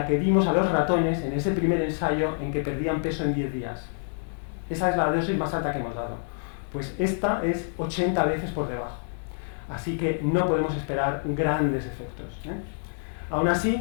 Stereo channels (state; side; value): silent; right; digital silence